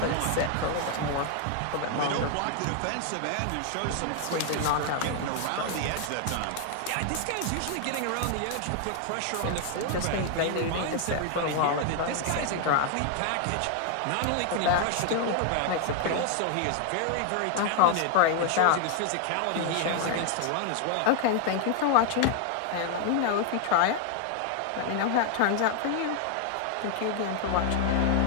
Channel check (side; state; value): both; different; correlation 0.00